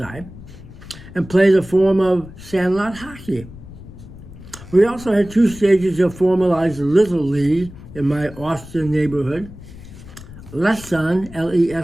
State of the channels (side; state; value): left; noise; rumble, 16 dB below the sound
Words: and played a form of sandlot hockey. We also had two stages of formalized Little League in my Austin neighborhood. Leson,